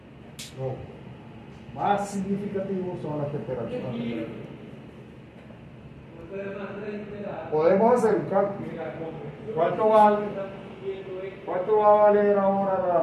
Lo más significativo son las temperaturas. Podemos hacer un cálculo. ¿Cuánto va a valer ahora la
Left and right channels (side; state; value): both; identical; correlation 1.00